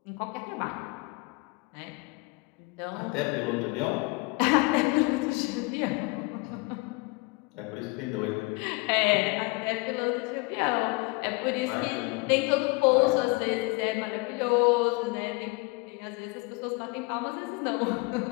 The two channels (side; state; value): right; quieter; 26.5 dB